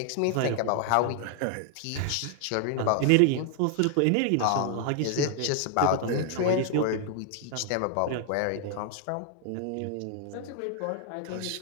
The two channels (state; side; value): different; both; correlation 0.00